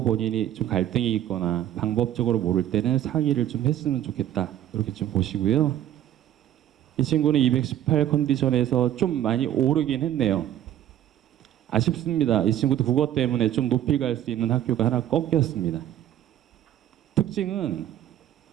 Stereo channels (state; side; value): quieter; left; 11.7 dB